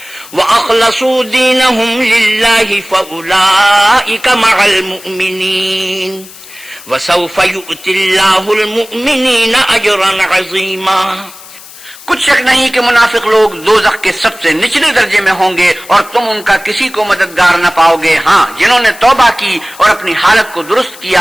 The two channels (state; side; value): noise; left; hiss, 19 dB below the sound